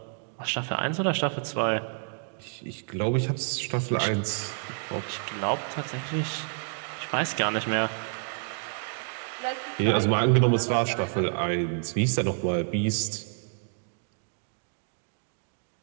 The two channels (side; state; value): left; silent; digital silence